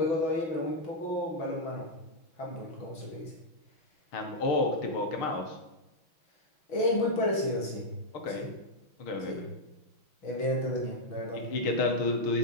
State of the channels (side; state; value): right; late; 6.2 ms